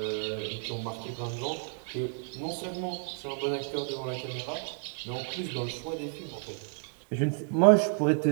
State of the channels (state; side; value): silent; left; 57 dB below the other